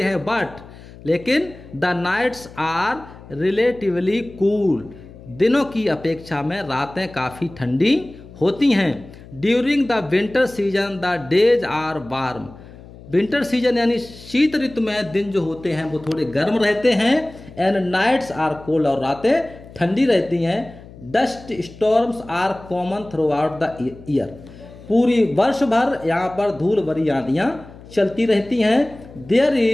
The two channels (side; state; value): left; noise; hum, 19 dB below the sound